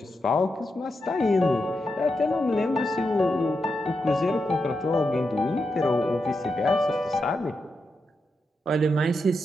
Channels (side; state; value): both; normal; correlation 0.86